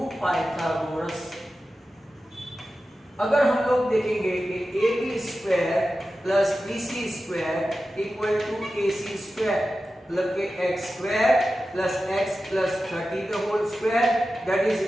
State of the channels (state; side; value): normal; both; correlation 0.93